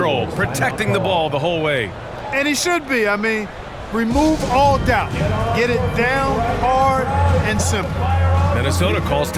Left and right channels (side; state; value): both; identical; correlation 1.00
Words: protecting the ball the whole way. And he should be. I mean, remove all doubt. Get it down, hard, and simple. Minnesota calls